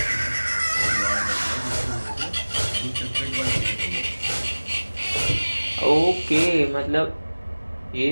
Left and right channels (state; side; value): inverted; both; correlation -1.00